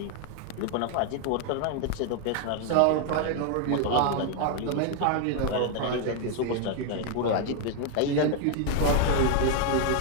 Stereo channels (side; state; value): both; different; correlation 0.00